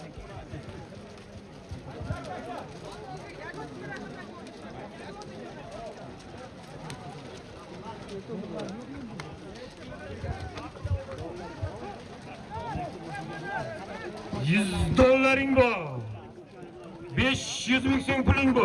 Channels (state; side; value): identical; both; correlation 1.00